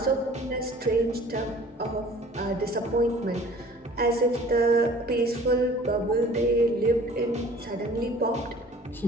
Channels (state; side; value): normal; both; correlation 0.49